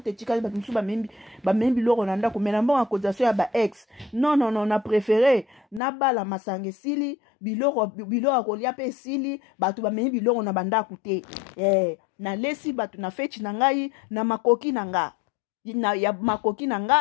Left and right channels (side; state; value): right; drops out; at 5.8 s